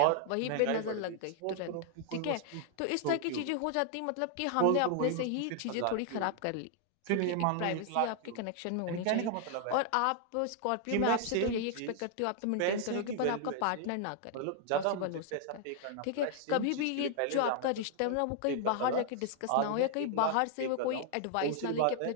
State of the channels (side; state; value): both; different; correlation 0.00